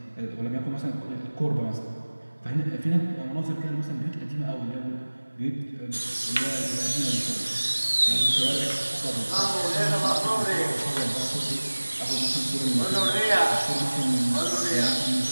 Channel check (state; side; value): inverted; both; correlation -1.00